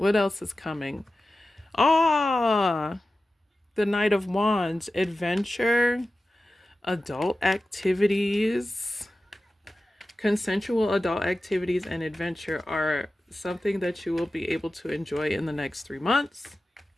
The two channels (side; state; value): both; normal; correlation 0.94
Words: else is coming? Ah, the Knight of Wands, adventure, adult activities. Consensual adult activities and adventure are something that you will be able to enjoy in the next 3 months.